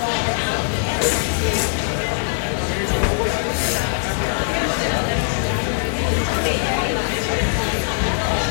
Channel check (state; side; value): silent; right; digital silence